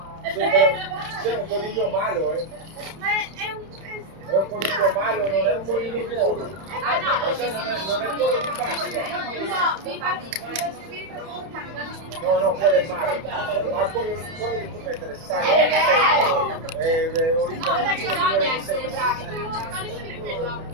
C'è un coniglio malo, Ma è un È un coniglio malo, non è un coniglio buono. ah no, Non è quello di Pasqua. no, infatti No, quello è malo. Ma quello che tu mettere sale è originale. bisogna essere bravi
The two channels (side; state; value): left; late; 31 ms